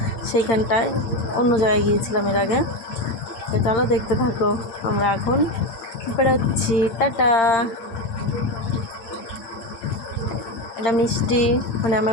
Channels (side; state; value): right; late; 8.7 ms